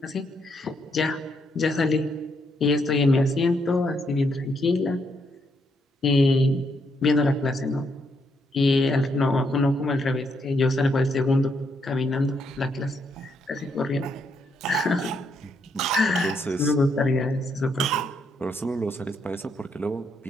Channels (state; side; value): normal; both; correlation 0.76